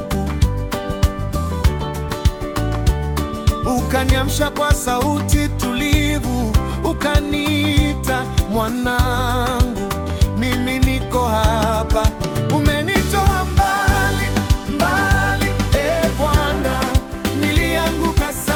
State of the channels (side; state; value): both; identical; correlation 1.00